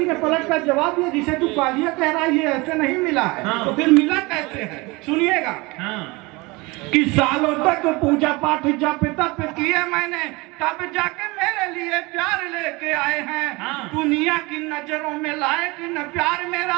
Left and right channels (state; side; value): quieter; left; 24.4 dB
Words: ने पलट कर जवाब दिया, जिसे तू कालिया कह रहा है ये ऐसे नहीं मिला है। तो फिर मिला कैसे है? सुनिएगा कि सालों तक पूजा पाठ जप तप किए मैंने, तब जाके मेरे लिए प्यार लेके आए हैं। दुनिया की नजरों में लायक न प्यार